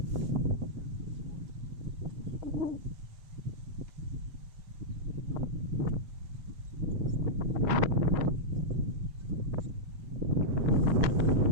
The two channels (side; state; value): left; late; 7.2 ms